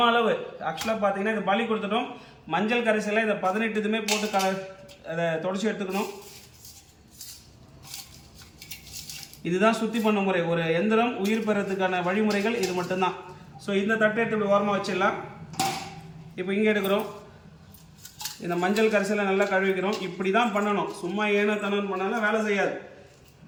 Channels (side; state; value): both; identical; correlation 1.00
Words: அளவு ஆக்சுவலாக பார்த்தீங்கன்னா இந்த பலி கொடுத்துட்டோம். மஞ்சள் கரைசலை இந்த 18 இதுமே போட்டு அதை தொடச்சி எடுத்துக்கணும். இதுதான் சுத்தி பண்ண முறை. ஒரு எந்திரம் உயிர் பெறத்துக்கான வழிமுறைகள் இது மட்டும்தான். ஸோ இந்த தட்டை எடுத்து இப்படி ஓரமாக வச்சிடலாம். இப்போ இங்கே எடுக்கிறோம். இந்த மஞ்சள் கரைசலை நல்லா கழுவிக்கிறோம். இப்படி தான் பண்ணணும். சும்மா ஏனோ தனம் பண்ணாலும் வேலை செய்யாது.